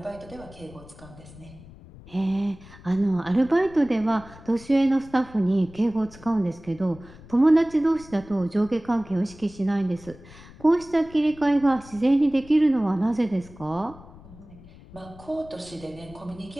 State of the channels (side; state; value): left; noise; rumble, 20 dB below the sound